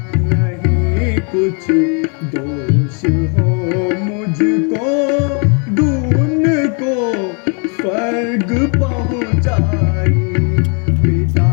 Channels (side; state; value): right; quieter; 37.5 dB